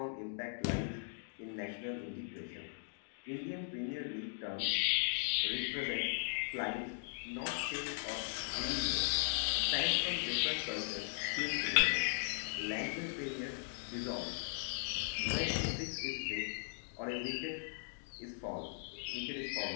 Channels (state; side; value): silent; right; digital silence